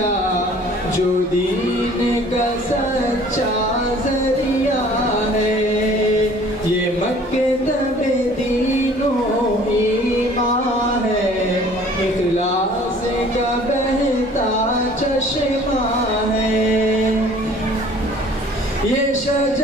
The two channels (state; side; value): normal; both; correlation 0.52